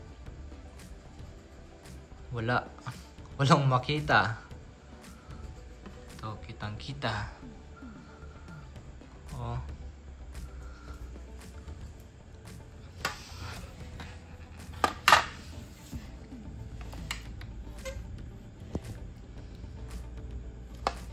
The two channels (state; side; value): identical; both; correlation 1.00